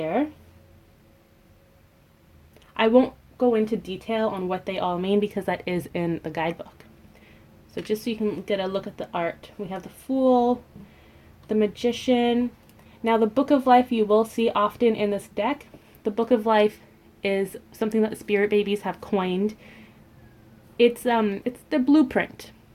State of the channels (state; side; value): identical; both; correlation 1.00